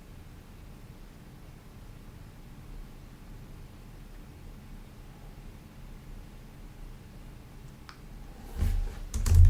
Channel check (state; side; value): identical; both; correlation 1.00